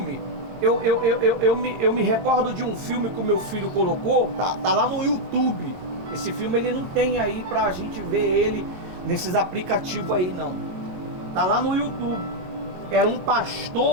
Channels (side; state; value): left; late; 22 ms